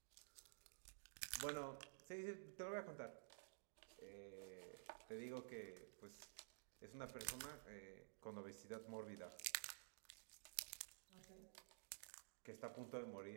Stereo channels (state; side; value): silent; left; digital silence